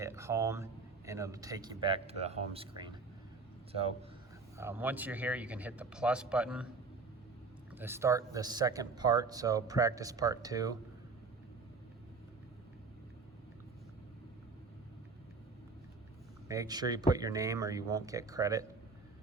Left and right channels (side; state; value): left; quieter; 4.2 dB